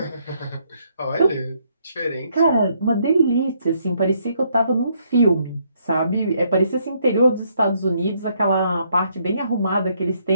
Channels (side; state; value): both; inverted; correlation -0.72